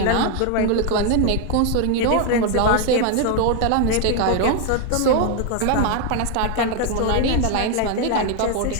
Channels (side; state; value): both; different; correlation 0.01